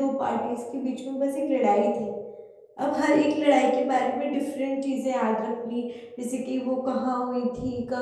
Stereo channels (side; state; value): both; identical; correlation 1.00